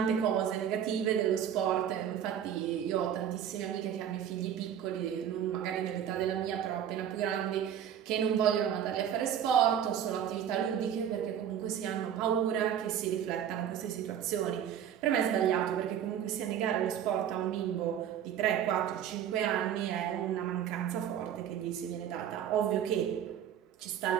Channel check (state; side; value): quieter; left; 9.5 dB